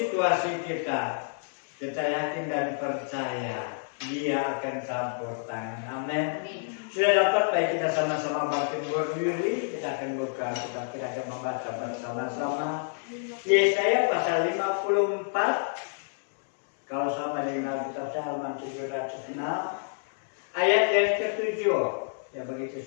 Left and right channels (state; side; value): silent; right; 59 dB below the other